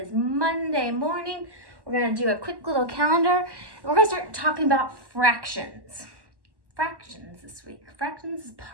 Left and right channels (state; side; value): late; left; 1.1 ms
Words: Monday morning. We're going to do a quick little calendar, and we're going to start talking about fractions. Fractions this week. Fractions is